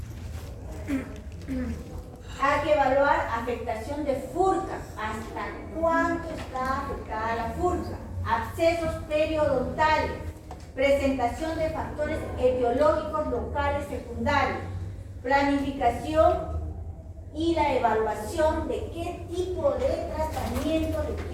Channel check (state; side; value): identical; both; correlation 1.00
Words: Hay que evaluar afectación de furca. ¿Hasta cuánto está afectada la furca? Abscesos periodontales. Presentación de factores etiológicos locales secundarios. Planificación y la evaluación de qué tipo de tratamiento